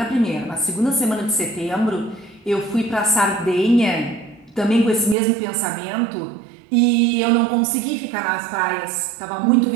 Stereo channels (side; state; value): left; drops out; at 5.2 s